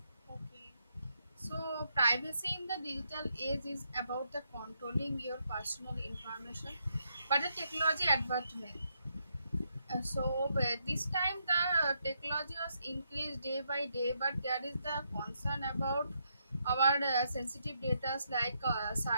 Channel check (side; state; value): both; inverted; correlation -0.78